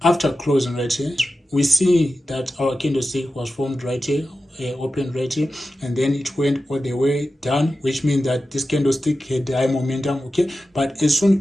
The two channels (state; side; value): normal; both; correlation 0.93